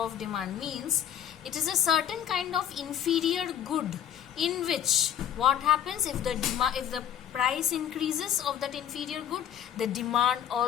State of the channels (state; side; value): quieter; right; 9.9 dB